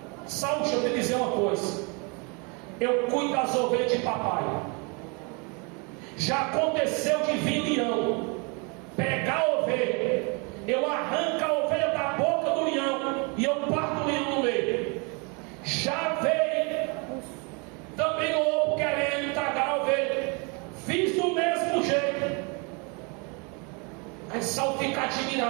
Saul, deixa eu te dizer uma coisa: eu cuido das ovelhas de papai. Já aconteceu de vir leão, pegar a ovelha, eu arranco a ovelha da boca do leão e eu parto o leão no meio. Já veio também o lobo querendo tragar a ovelha, fiz do mesmo jeito. Aí Saul fica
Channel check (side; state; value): left; quieter; 32.4 dB